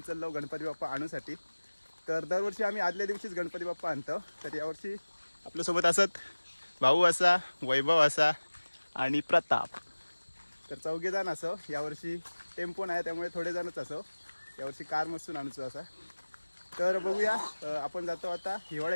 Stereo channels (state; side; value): inverted; both; correlation -1.00